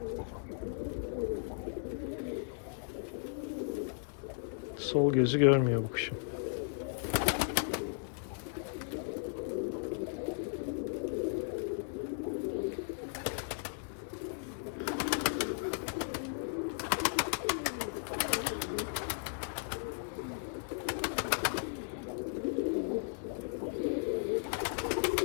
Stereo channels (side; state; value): right; silent; digital silence